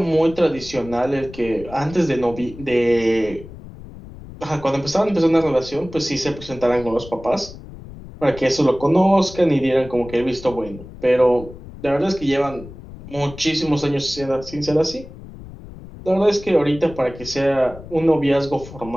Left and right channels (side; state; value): left; noise; rumble, 16 dB below the sound